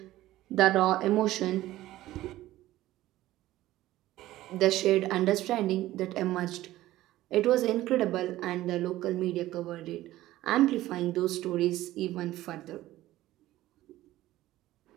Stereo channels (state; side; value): quieter; left; 15.6 dB